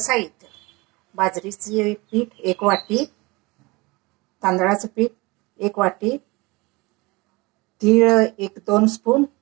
बाजरीचे पीठ 1 वाटी, तांदळाचे पीठ 1 वाटी, तीळ 1-2 स्पून,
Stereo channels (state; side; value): quieter; left; 24.2 dB